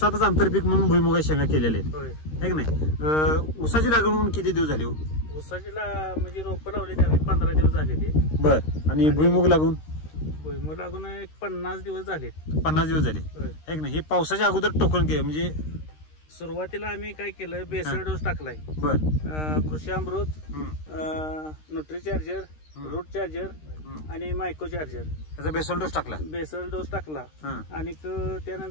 आंतरपीक म्हणून भुईमुगाची शेंगा केलेल्या आहेत, आहे की नाही. ऊसाची लागवड म्हणून किती दिवस झाली? ऊसाचीला म्हणजे रोपं लावली त्यावेळी 15 दिवस झाले ते. बर. आणि भुईमुग लागून? भुईमुग लागून एक 50 दिवस झाले. 50 दिवस झाले, आहे की नाही. हे पावसाच्या अगोदर टोकन केलं म्हणजे सुरुवातीला आम्ही काय केलं, बेसल डोस टाकलाय. बर. कृषी अमृत, न्यूट्री चार्जर, रूट चार्जर आणि मायको चार्जर, त्याचा बेसल डोस टाकला. बेसल डोस टाकला. आणि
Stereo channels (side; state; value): right; late; 13 ms